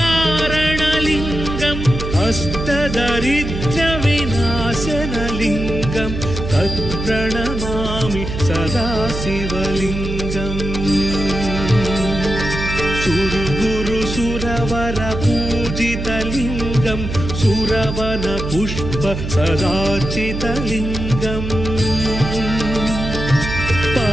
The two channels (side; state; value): right; noise; hum, 5 dB below the sound